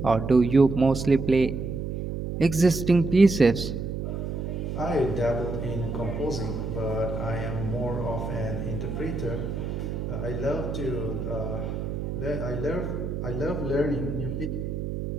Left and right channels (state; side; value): noise; right; hum, 4 dB below the sound